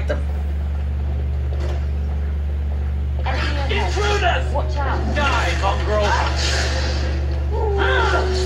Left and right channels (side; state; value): both; identical; correlation 1.00